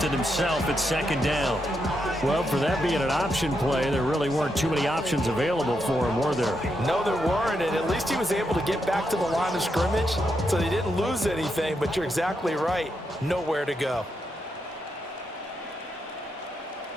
it himself at 2nd down. Well, for that being an option play, there really weren't too many options available for him, were there? No, there weren't, and at least he was able to get back to the line of scrimmage, so they didn't lose anything, but you're exactly right. Nowhere to go.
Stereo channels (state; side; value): normal; both; correlation 0.82